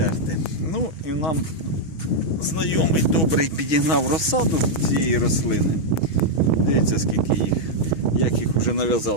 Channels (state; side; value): late; right; 6.2 ms